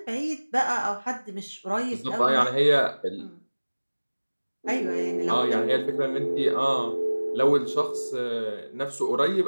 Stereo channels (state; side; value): inverted; both; correlation -1.00